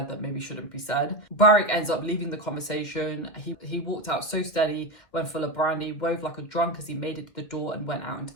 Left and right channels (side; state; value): right; late; 2.2 ms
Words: that maybe shouldn't be said. Burrich ends up leaving the conversation. He walked out so steady when full of brandy, wove like a drunk as he made it to the door and went out into